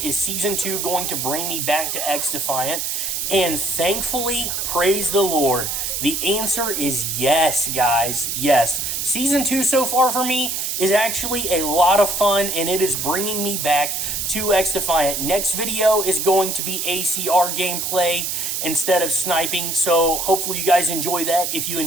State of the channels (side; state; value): right; noise; hiss, 2 dB below the sound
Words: is Season 2 going to bring me back to XDefiant? And thankfully, praise the Lord, the answer is yes, guys, yes. Season 2 so far for me is actually a lot of fun, and it is bringing me back to XDefiant. Next video is going to be ACR gameplay instead of sniping, so hopefully you guys enjoy that. If you